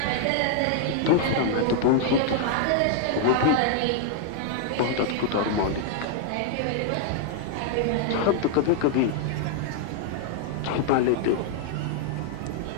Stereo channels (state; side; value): different; both; correlation 0.00